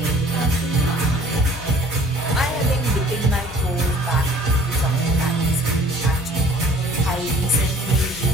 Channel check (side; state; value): both; normal; correlation 0.52